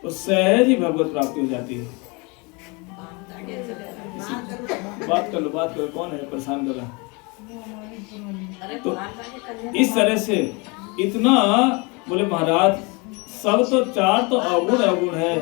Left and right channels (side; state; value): right; quieter; 29.0 dB